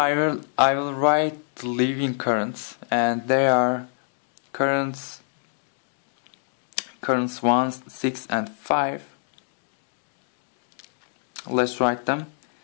will write the leaving currents, and they are currents 1, 6 and 5. Let's write them.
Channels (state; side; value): silent; right; digital silence